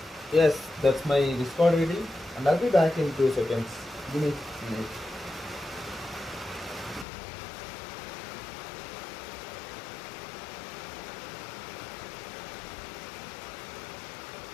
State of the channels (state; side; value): drops out; right; at 7.1 s